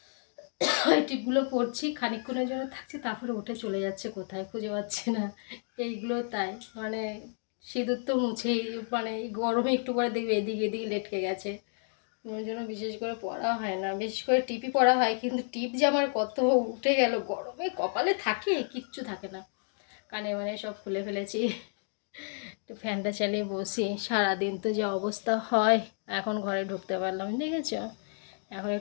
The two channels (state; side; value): silent; right; 57 dB below the other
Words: এই টিপগুলো পরছি খানিকক্ষণের জন্য থাকছে, তারপরে উঠে চলে যাচ্ছে কোথায় খুঁজে পাচ্ছি না। এইগুলো তাই, মানে সিঁদুর তো মুছেই, মানে এই গরমে একটু করে দেখবে এদিকে এদিকে লেটকে গেছে, ওই জন্য বিশেষ করে পরা হয় না। বিশেষ করে টিপই পরা হয়, কিন্তু টিপ যে আমার কত উঠে গেল, গরমে কপালে থাকে কিচ্ছু থাকে না। কানে মানে সব খুলে ফেলেছি। একটু ফ্যানটা চালিয়ে বসি, সারাদিন তো যে অবস্থা হয়। এখন ঘরে ঢুকতে পারলাম, দেখেছ, এখন